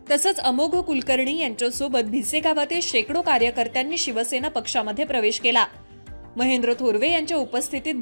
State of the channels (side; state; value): both; inverted; correlation -1.00